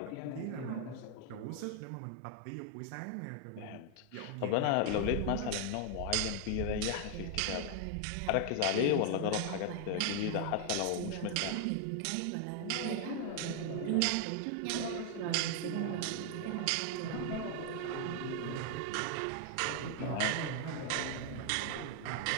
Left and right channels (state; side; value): different; both; correlation 0.00